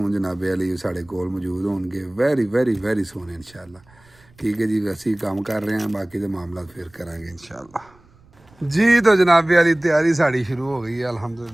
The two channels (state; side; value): noise; right; rumble, 29 dB below the sound